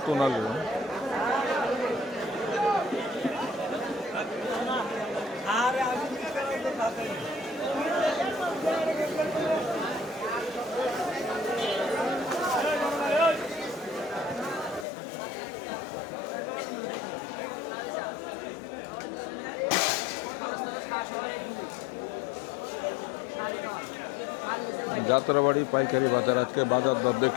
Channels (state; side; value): drops out; right; at 14.9 s